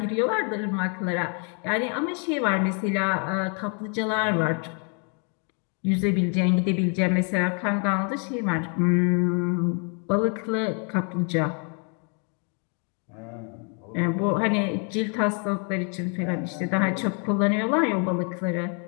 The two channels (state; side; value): quieter; right; 39.1 dB